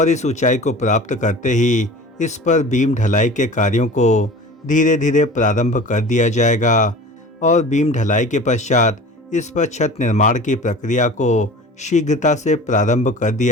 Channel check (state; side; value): normal; both; correlation 0.39